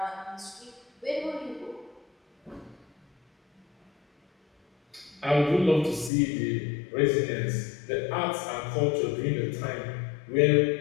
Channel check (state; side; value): drops out; right; at 6.1 s